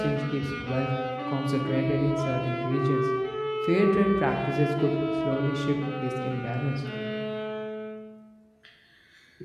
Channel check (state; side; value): identical; both; correlation 1.00